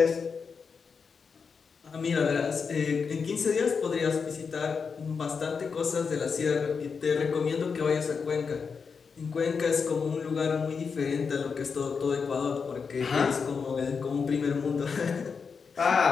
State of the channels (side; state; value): right; quieter; 5.6 dB